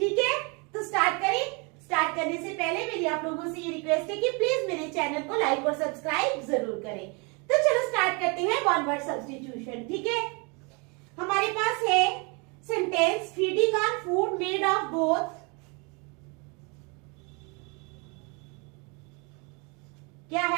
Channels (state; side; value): quieter; left; 31.2 dB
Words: है, तो स्टार्ट करें। स्टार्ट करने से पहले मेरी आप लोगों से ये रिक्वेस्ट है कि प्लीज मेरे चैनल को लाइक और सब्सक्राइब जरूर करें। तो चलो स्टार्ट करते हैं वन वर्ड सब्स्टिट्यूशन। ठीक है, हमारे पास है sentence feeding on food made of both, क्या